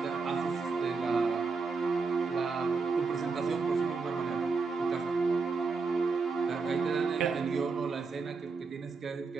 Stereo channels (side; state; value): left; quieter; 4.5 dB